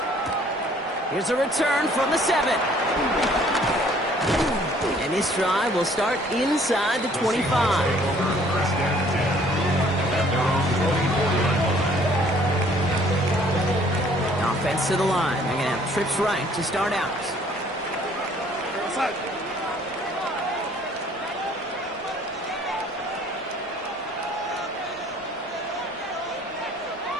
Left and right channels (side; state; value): both; normal; correlation 0.59